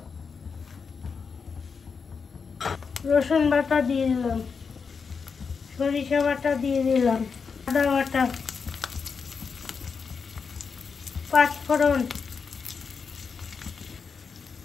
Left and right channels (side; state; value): right; quieter; 5.6 dB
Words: রসুন বাটা দিয়ে দিলাম, সরিষা বাটা দিয়ে দিলাম, আদা বাটা, পাঁচফোড়ন,